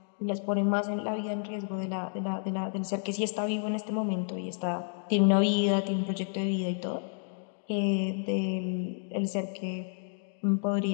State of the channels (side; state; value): right; silent; digital silence